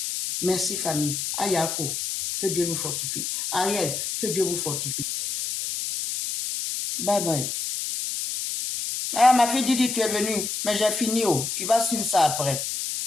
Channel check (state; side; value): noise; left; hiss, 3 dB below the sound